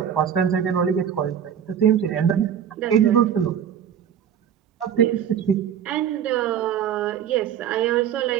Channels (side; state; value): left; quieter; 8.9 dB